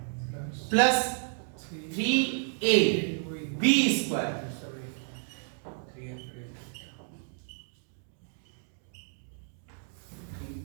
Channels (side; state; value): left; silent; 57 dB below the other